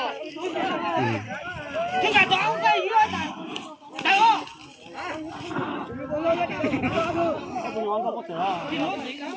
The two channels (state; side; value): identical; both; correlation 1.00